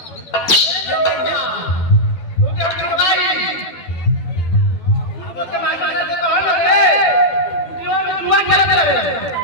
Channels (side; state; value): right; late; 12 ms